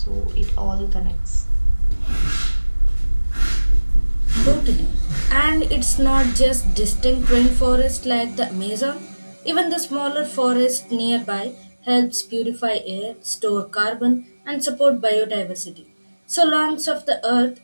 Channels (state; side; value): inverted; both; correlation -1.00